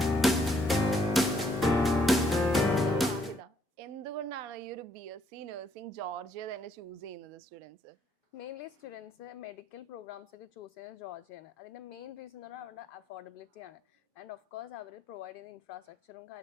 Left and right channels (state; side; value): normal; both; correlation 0.69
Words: എന്തുകൊണ്ടാണ് ഈ ഒരു BSc നഴ്സിംഗ് ജോർജിയ തന്നെ ചൂസ് ചെയ്യുന്നത് students? Mainly students medical programmes ഒക്കെ ചൂസ് ചെയ്യുന്നത് ജോർജിയാണ്. അതിൻ്റെ മെയിൻ റീസൺ എന്ന് പറഞ്ഞാൽ അവരുടെ അഫോർഡബിലിറ്റി ആണ്. ആൻഡ് ഓഫ് കോഴ്സ് അവർ പ്രൊവൈഡ് ചെയ്യുന്ന ഇൻഫ്രാസ്ട്രക്ചറും